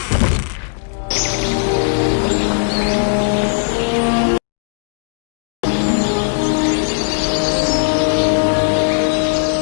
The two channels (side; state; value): right; silent; digital silence